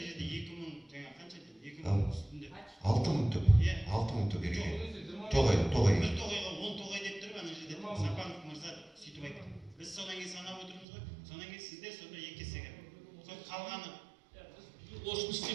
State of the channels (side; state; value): left; drops out; at 10.9 s